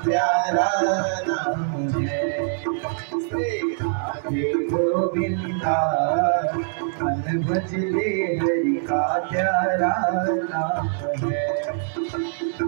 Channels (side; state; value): left; silent; 63 dB below the other